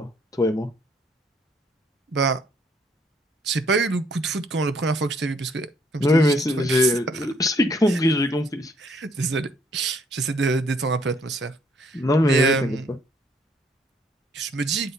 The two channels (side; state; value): both; normal; correlation 0.66